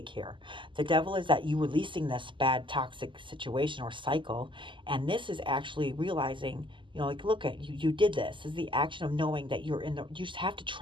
here. The devil is that you releasing this bad toxic situation or cycle, and this is actually realizing, like, look at you did this. This is the action of knowing that you just have to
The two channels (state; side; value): late; left; 0.24 ms